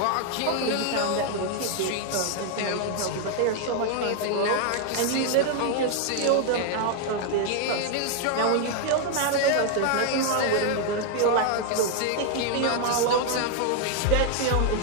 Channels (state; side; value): different; both; correlation 0.00